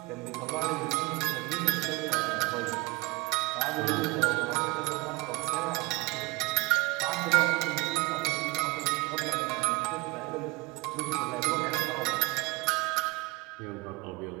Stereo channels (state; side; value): quieter; left; 23.5 dB